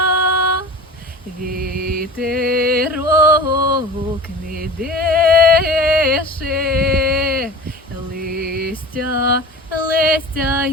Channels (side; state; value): both; normal; correlation 0.36